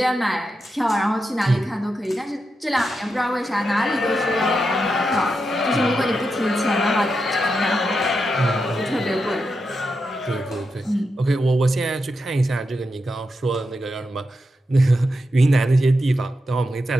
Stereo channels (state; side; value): normal; both; correlation 0.87